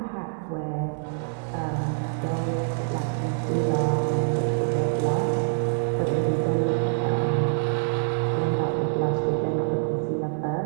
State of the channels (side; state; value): left; silent; digital silence